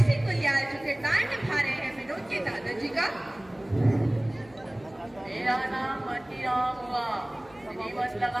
Singh गुलियाल, जो किरदार निभा रहे हैं विनोद के दादाजी का। मेरा नाम मतीराम हुआ, श्रीमत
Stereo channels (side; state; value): left; noise; hum, 26 dB below the sound